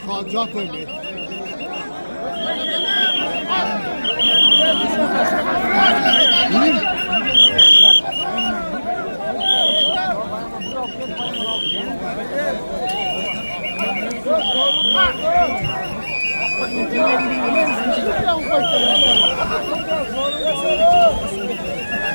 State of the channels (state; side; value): inverted; both; correlation -1.00